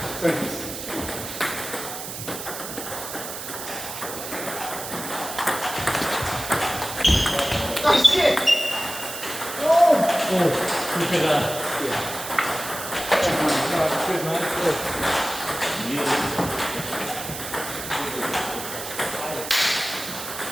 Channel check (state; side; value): noise; right; hiss, 8 dB below the sound